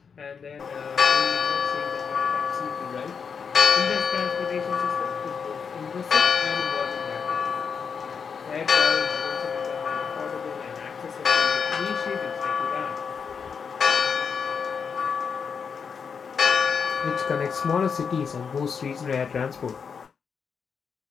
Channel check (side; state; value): right; quieter; 6.2 dB